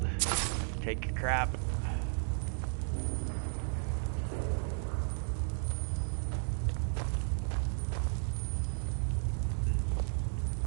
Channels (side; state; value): left; silent; digital silence